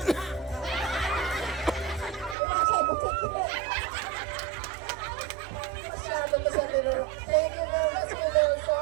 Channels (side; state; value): left; drops out; at 2.4 s